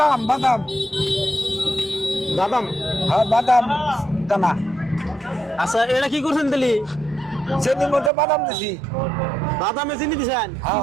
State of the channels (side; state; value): left; drops out; at 8.1 s